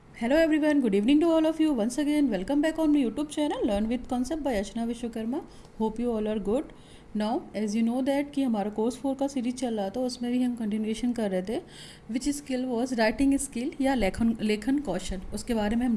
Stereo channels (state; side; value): identical; both; correlation 1.00